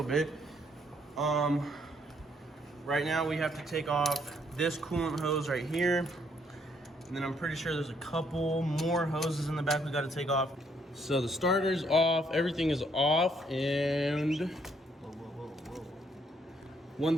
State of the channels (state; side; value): normal; both; correlation 0.70